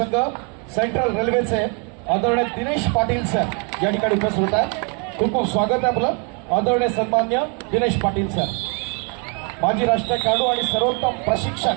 सेंट्रल रेल्वेचे आदरणीय दिनेश पाटील सर या ठिकाणी उपस्थित होत आहेत. खूप खूप स्वागत आहे आपलं आदरणीय सन्मान्य दिनेश पाटील सर. माजी राष्ट्रीय खेळाडू आणि सर्वोत्तम प्रशिक्षक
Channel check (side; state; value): left; quieter; 36.8 dB